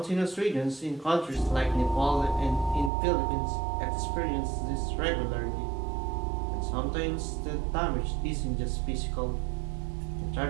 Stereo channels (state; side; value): drops out; left; at 2.9 s